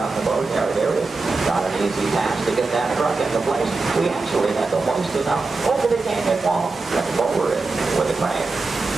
in the boatyard area. Not an easy task to get that truck into place. We actually had to hoist it up over the canyon wall and lower it with a crane.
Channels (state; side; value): quieter; left; 3.8 dB